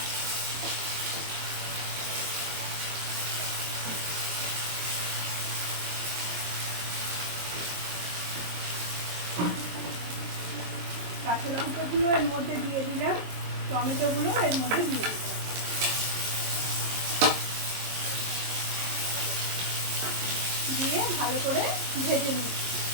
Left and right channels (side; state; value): left; late; 23 ms